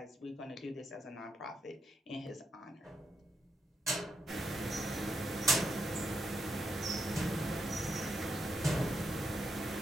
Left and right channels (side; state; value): both; normal; correlation 0.82